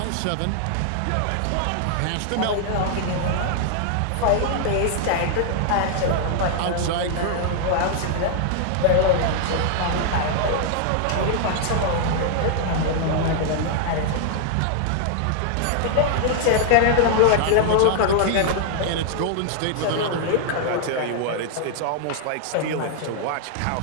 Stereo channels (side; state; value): both; different; correlation 0.00